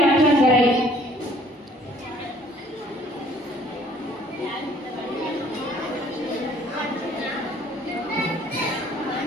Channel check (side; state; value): both; normal; correlation 0.58